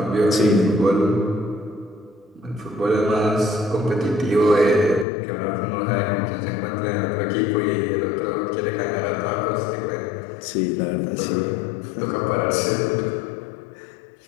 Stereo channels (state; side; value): drops out; right; at 5.1 s